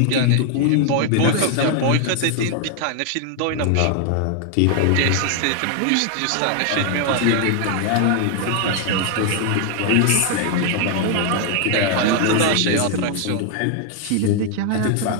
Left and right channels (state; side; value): different; both; correlation 0.00